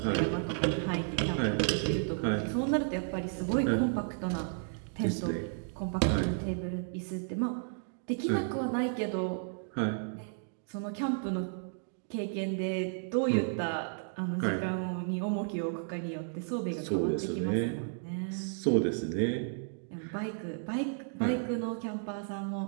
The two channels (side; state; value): left; silent; digital silence